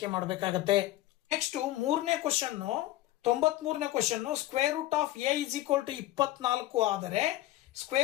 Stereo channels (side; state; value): right; quieter; 15.6 dB